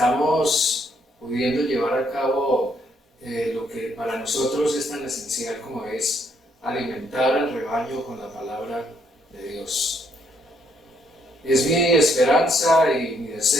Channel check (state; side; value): normal; both; correlation 0.71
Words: pudiendo llevar a cabo lo que para nosotros es tan esencial como es alimentar al rebaño con la palabra de Dios. Es mi esperanza y mi